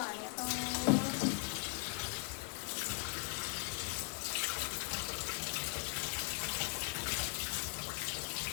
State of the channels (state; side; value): quieter; right; 37.0 dB